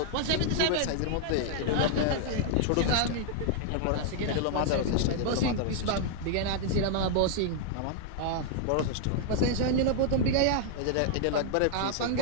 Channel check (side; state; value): both; different; correlation 0.00